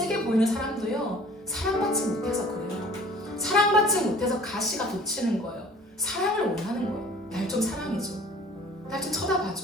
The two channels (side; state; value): both; normal; correlation 0.49